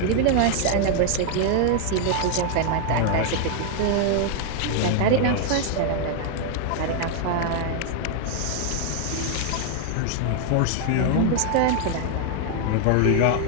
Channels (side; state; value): both; different; correlation 0.00